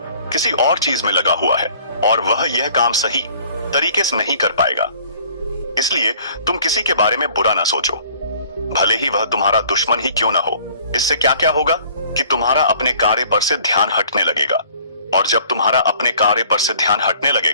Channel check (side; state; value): both; inverted; correlation -0.54